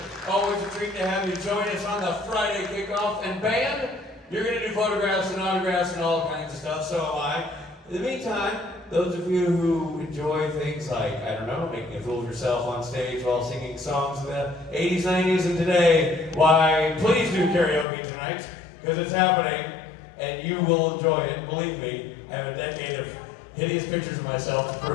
Always a treat to have you join us on the Friday kickoff. And band, you're going to do photographs and autographs and all kinds of stuff, so am I. In the meantime, those of you who enjoy things like, I don't know, making a fool of yourself on stage while singing songs of the 80s, 90s, and today, why, please do karaoke tonight, because it's happening, and you will enjoy it. Believe me, I have a decade of hideous pictures of myself to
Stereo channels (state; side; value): drops out; right; at 17.9 s